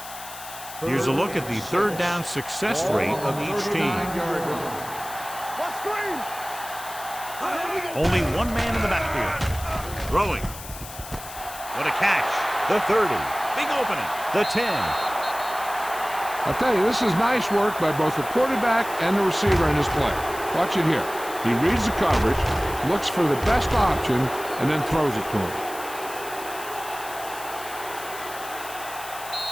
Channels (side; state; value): left; noise; hiss, 13 dB below the sound